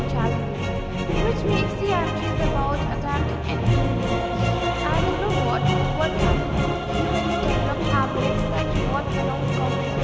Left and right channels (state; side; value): identical; both; correlation 1.00